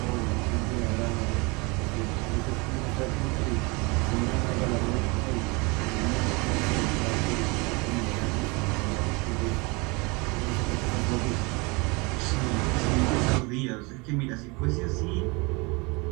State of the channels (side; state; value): left; quieter; 27.8 dB